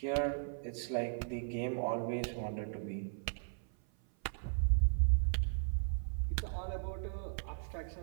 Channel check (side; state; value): left; silent; 53 dB below the other